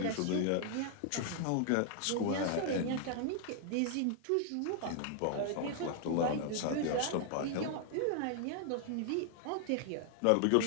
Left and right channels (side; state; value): both; different; correlation 0.00